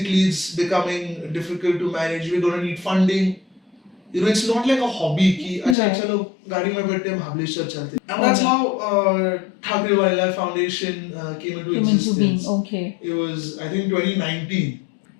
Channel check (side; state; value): right; drops out; at 5.8 s